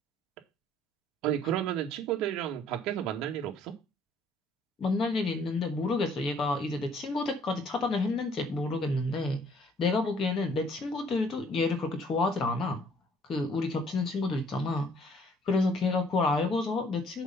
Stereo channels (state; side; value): normal; both; correlation 0.60